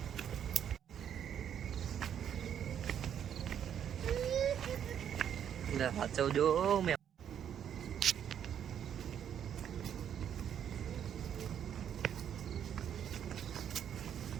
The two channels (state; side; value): quieter; left; 9.1 dB